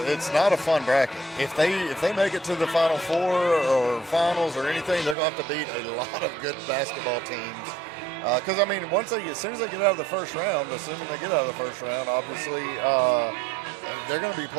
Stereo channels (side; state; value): left; drops out; at 5.2 s